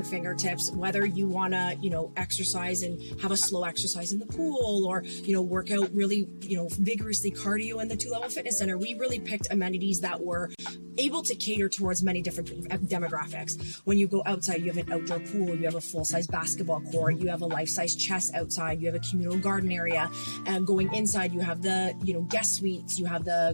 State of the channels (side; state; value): both; inverted; correlation -1.00